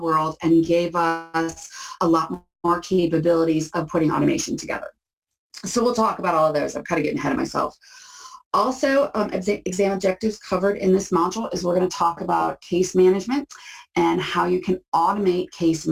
world and gave us a lot more capabilities of putting automation together. So we'll talk about all of those. I'm kind of getting ahead of myself. Also, exam objectives covered in this module is we're going to talk about case management and how you can automate case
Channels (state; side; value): identical; both; correlation 1.00